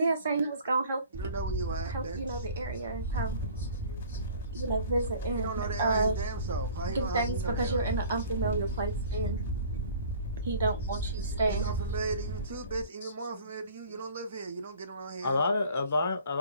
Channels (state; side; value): inverted; both; correlation -0.48